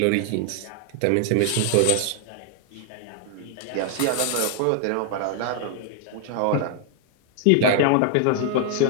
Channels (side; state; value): both; different; correlation 0.00